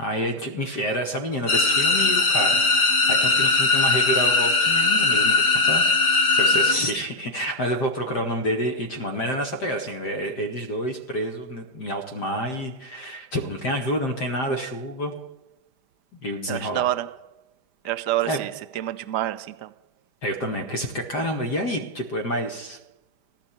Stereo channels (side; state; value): right; late; 5.0 ms